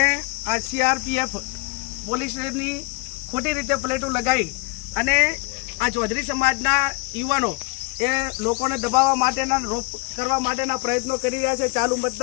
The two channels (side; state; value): right; quieter; 30.1 dB